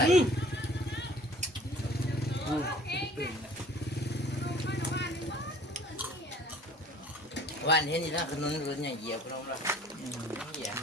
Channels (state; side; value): normal; both; correlation 0.51